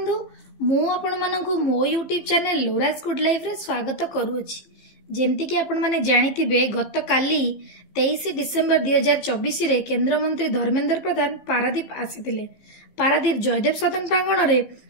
मु आपण मानकु मो यूट्यूब चैनल लोराज गुड लाइफ रे स्वागत करूछि। जेमती कि आपण माने जानिथिबे गत काली 23 डिसेंबर 2024 रे केंद्र मंत्री धर्मेंद्र प्रधान पारादीप आसीथिले। पारादीप जयदेव सदन प्रांगण रे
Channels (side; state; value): right; late; 15 ms